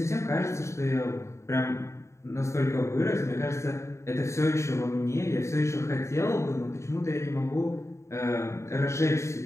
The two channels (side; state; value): right; late; 0.14 ms